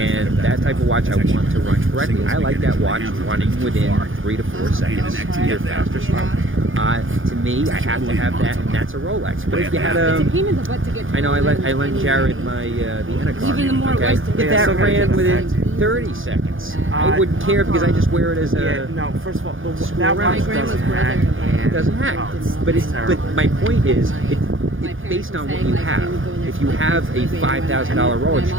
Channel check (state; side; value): late; left; 0.58 ms